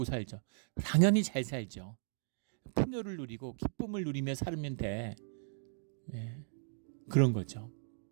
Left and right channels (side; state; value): left; silent; digital silence